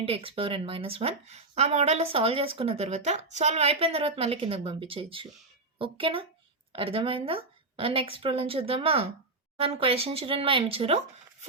ఇంటూ ఎక్స్ పవర్ ఎన్ మైనస్ 1. ఆ మోడల్లో సాల్వ్ చేసుకున్న తర్వాత సాల్వ్ అయిపోయిన తర్వాత మళ్ళీ కిందకి పంపించేయచ్చు. ఓకేనా, అర్థమైందా? నెక్స్ట్ ప్రాబ్లం చూద్దామా. మన క్వశ్చన్ చూడండి, మా ఏమి ఇచ్చారు?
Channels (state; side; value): quieter; left; 3.2 dB